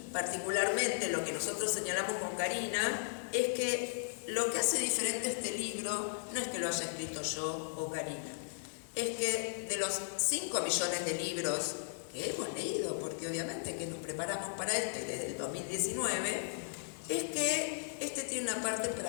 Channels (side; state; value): right; silent; digital silence